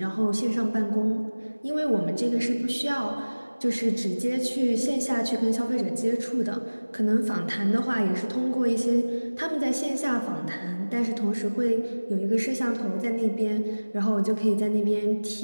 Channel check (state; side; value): inverted; both; correlation -1.00